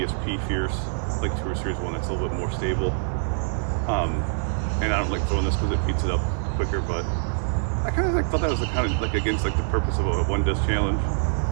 Fierce, like Tour Series 1 that's a little bit more stable. And I don't like throwing this because it beats it up quicker, but I kind of like thought that was kind of like against like the purpose of a one disc challenge.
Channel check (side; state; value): left; silent; 60 dB below the other